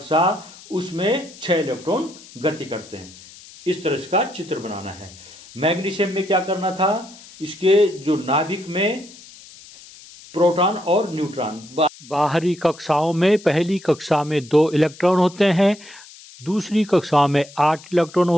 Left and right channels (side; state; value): left; noise; hiss, 20 dB below the sound